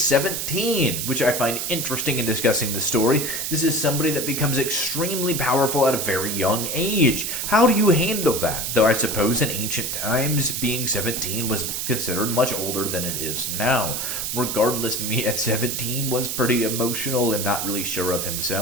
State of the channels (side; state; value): right; noise; hiss, 2 dB below the sound